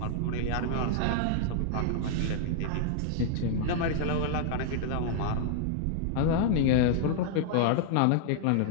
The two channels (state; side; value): different; both; correlation -0.01